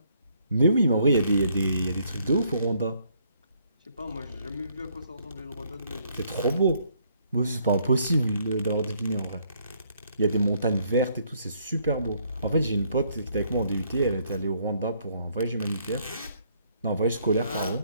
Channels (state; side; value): inverted; both; correlation -0.68